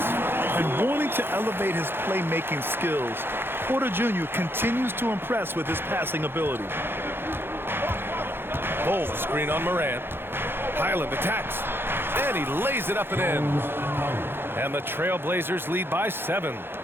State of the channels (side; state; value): left; late; 0.10 ms